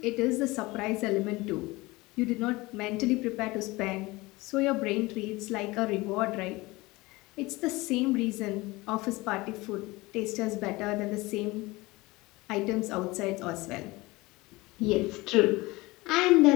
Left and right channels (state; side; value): quieter; right; 21.7 dB